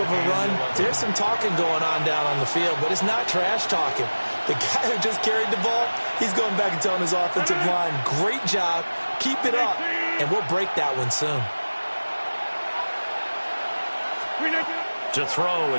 a run, there's some talking going on down on the field, but it's not trash talking. The guy who just carried the ball, he's going back and telling his offensive line, great job, keep it up, and we'll break that one soon. To throw,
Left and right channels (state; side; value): inverted; both; correlation -1.00